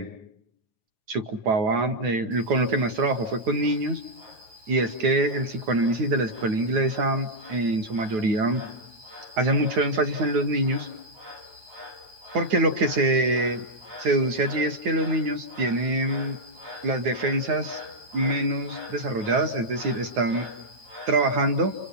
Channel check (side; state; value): left; late; 9.2 ms